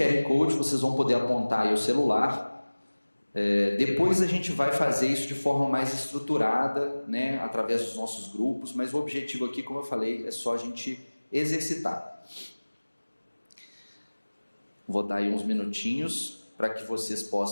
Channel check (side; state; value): both; inverted; correlation -1.00